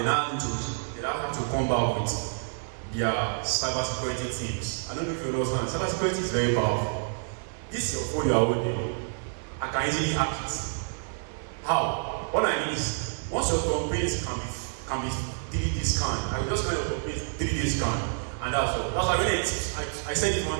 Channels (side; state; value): left; silent; 59 dB below the other